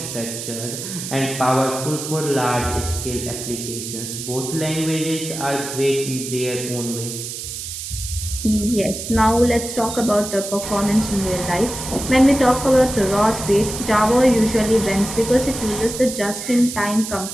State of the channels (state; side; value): noise; right; hiss, 7 dB below the sound